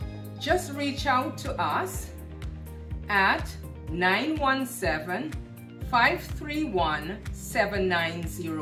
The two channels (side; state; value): both; identical; correlation 1.00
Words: Just reach out to us at